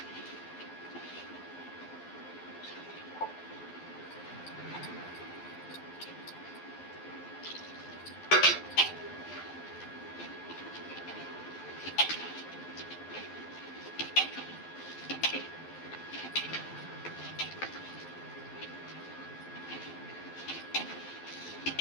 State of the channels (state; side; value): late; right; 12 ms